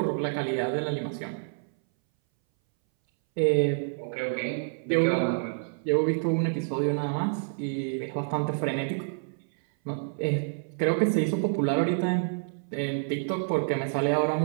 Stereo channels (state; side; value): silent; left; 59 dB below the other